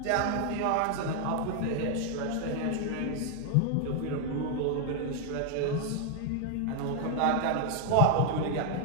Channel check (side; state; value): both; different; correlation 0.01